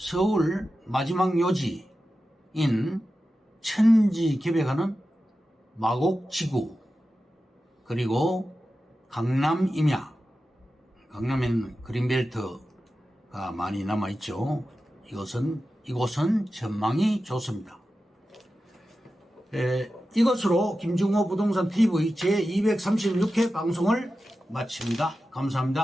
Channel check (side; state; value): both; normal; correlation 0.93